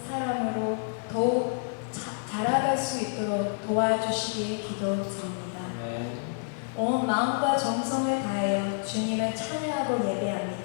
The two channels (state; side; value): silent; right; digital silence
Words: 사랑으로 더욱 자라갈 수 있도록 도와주시기 기도드립니다. 온 마음과 정성을 다하여 주님을 찬양하고